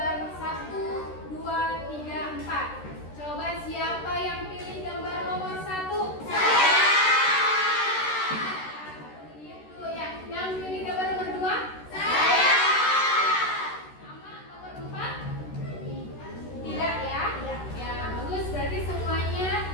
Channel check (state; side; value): late; right; 13 ms